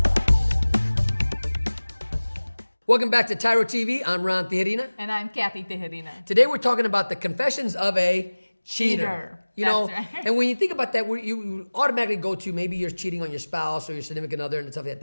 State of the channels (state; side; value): inverted; both; correlation -1.00